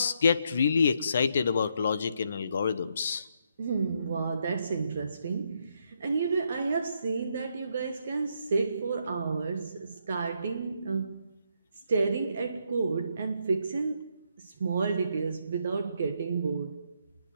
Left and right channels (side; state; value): both; inverted; correlation -0.76